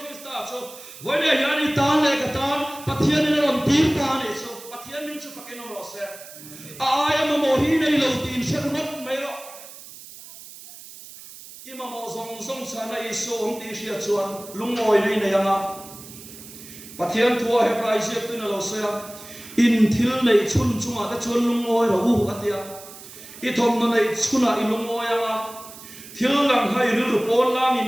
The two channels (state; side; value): noise; right; hiss, 16 dB below the sound